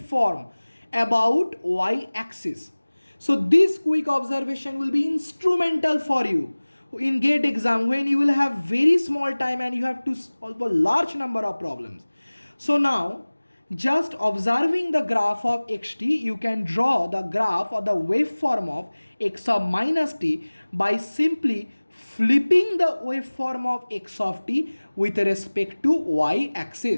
about y-axis. So this quick observation will be instrumental for you in GATE exam when you will have very small time and you have to solve a large number of problems. So now, just observing the graph of xt, you can draw the graph or the waveform of x of minus t by simply flipping the waveform of x of t with respect to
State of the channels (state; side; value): inverted; both; correlation -1.00